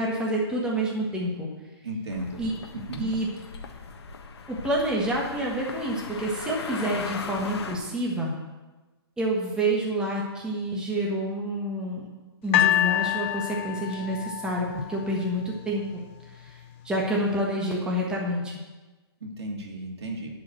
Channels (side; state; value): both; normal; correlation 0.02